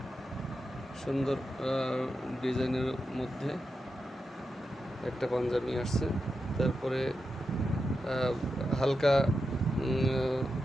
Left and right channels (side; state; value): both; normal; correlation 0.88